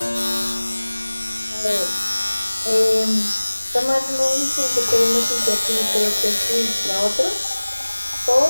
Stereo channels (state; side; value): inverted; both; correlation -1.00